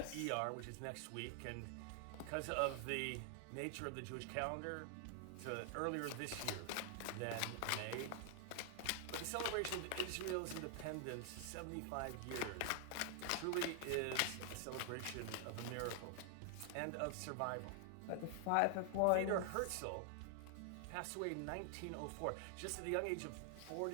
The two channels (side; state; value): both; different; correlation 0.00